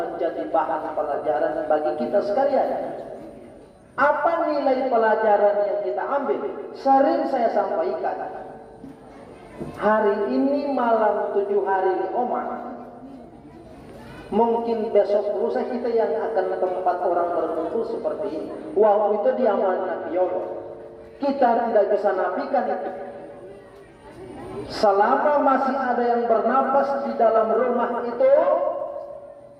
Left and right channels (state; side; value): identical; both; correlation 1.00